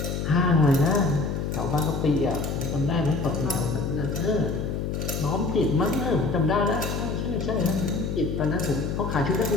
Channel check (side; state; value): left; noise; hum, 2 dB below the sound